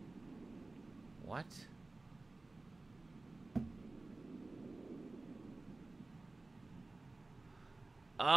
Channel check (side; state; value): left; quieter; 3.2 dB